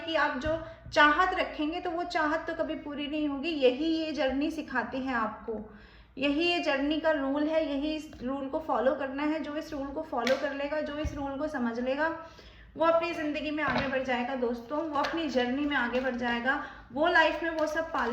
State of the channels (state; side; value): identical; both; correlation 1.00